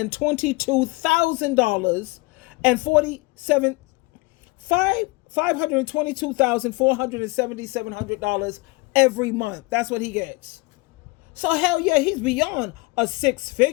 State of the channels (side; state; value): right; quieter; 24.6 dB